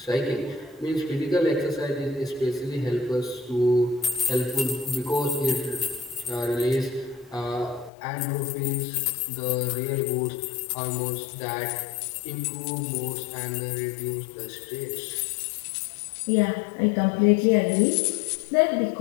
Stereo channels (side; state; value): right; drops out; at 7.9 s